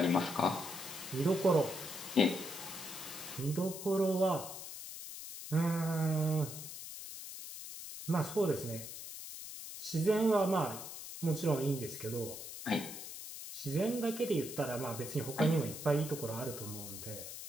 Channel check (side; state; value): left; noise; hiss, 10 dB below the sound